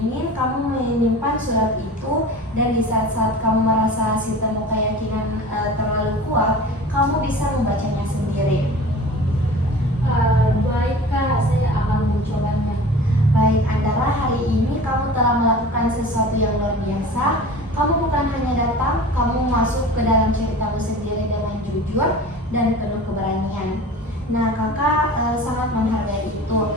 kamu menyimpan surat itu, dan di saat-saat kamu merasa sistem keyakinan terlalu kuat, kamu bisa membacanya sendiri. Baik Kak, saya akan mencobanya. Baik Andara, hari ini kamu telah melakukan sesuatu yang luar biasa. Kamu bukan hanya datang, kamu masuk ke dalam ceritamu sendiri dengan jujur dan penuh keberanian. Nah, kakak sangat menghargai itu.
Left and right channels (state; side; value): normal; both; correlation 0.39